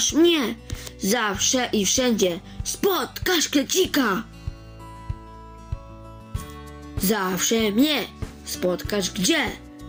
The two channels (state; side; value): identical; both; correlation 1.00